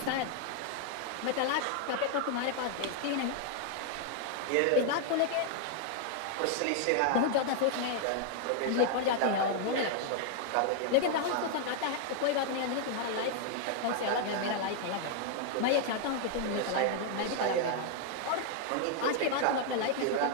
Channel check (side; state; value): both; different; correlation 0.00